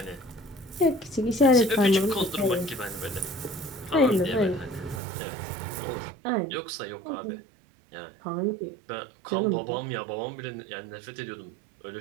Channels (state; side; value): drops out; left; at 5.0 s